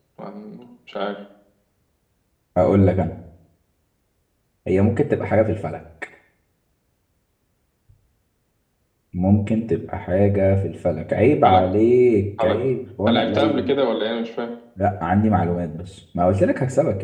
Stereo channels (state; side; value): identical; both; correlation 1.00